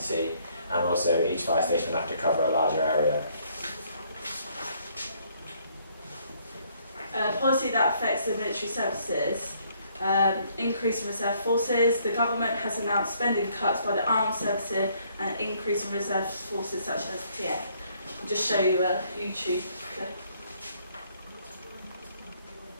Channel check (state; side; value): inverted; both; correlation -0.66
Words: and also each fire station will have to cover a larger area. Policy that affects the military services, increase in reserve forces. The government has announced spending cuts by the armed services and an increase in reserve forces such as TA. I'll just show you a YouTube clip.